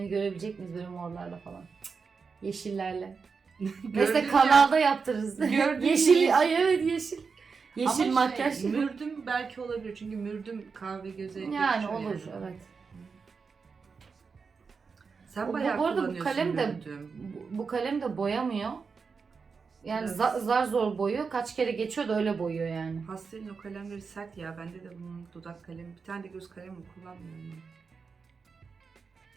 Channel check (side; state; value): left; quieter; 5.2 dB